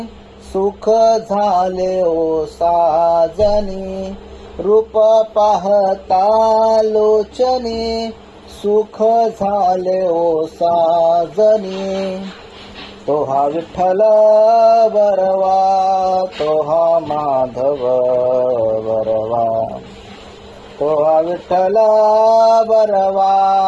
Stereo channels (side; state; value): both; identical; correlation 1.00